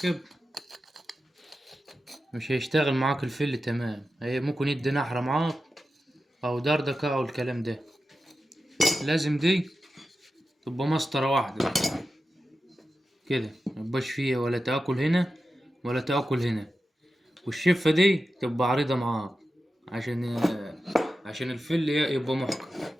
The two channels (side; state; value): both; normal; correlation 0.92